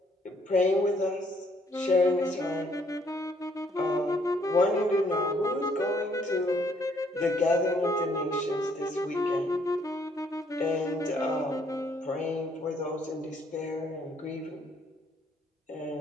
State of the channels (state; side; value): normal; both; correlation 0.67